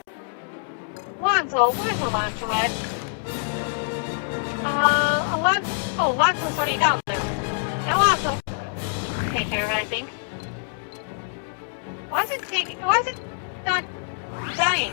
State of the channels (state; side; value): silent; right; digital silence